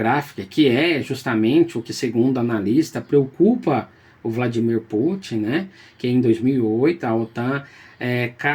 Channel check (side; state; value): both; identical; correlation 1.00